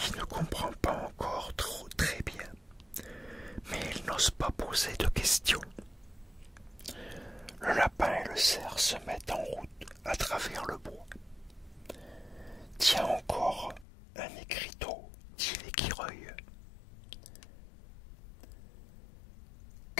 ne comprend pas encore très bien, mais il n'ose pas poser de questions. Le lapin et le cerf se mettent en route à travers le bois. Tiens encore un écriteau, dit l'écureuil.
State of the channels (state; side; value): drops out; right; at 13.9 s